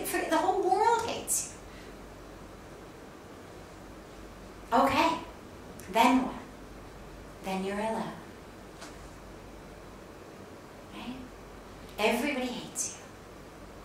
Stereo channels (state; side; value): identical; both; correlation 1.00